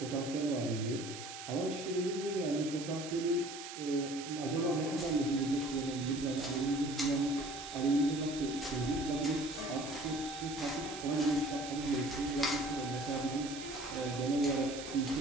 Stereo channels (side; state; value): right; noise; hiss, 10 dB below the sound